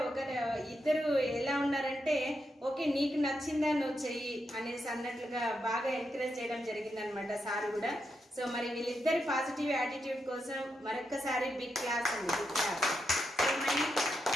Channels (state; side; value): normal; both; correlation 0.84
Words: ఇద్దరు ఎలా ఉన్నారంటే ఓకే నీకు నచ్చిందా నువ్వు చెయ్యి అనేసి అన్నట్లుగా బాగా ఎంకరేజ్ చేయడం జరిగింది అనమాట సార్ కూడా. సో మరి వీళ్ళిద్దరి పాజిటివ్ యాటిట్యూడ్ కోసం మరొక్కసారి బిగ్ క్లాస్ అండి, బిగ్ క్లాస్. సో మరి